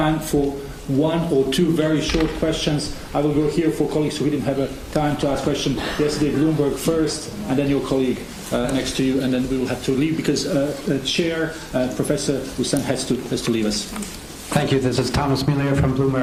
for one or two very short questions. I will go here for colleagues who didn't have time to ask questions. Yesterday, Bloomberg first, and then your colleague next to you, and then we will have to leave because Chair Professor Hussain has to leave us. Thank you. This is Thomas Muller from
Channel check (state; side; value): identical; both; correlation 1.00